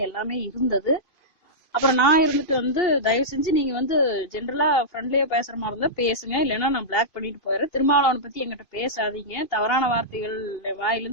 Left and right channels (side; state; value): right; late; 2.5 ms